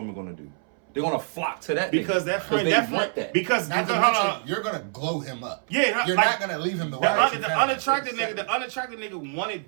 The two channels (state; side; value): silent; left; 61 dB below the other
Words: are gonna do? They're gonna flock to that Because nigga. that friend, they that want friend, that. because Not to hold mention, on. you're gonna glow him up. Yeah, You're like, not gonna leave him the The, way. unattractive nigga